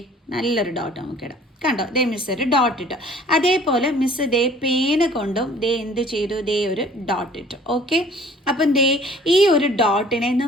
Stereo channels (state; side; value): normal; both; correlation 0.53